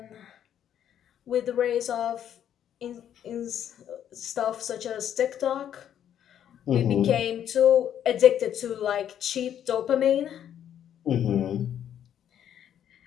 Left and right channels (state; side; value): quieter; right; 10.0 dB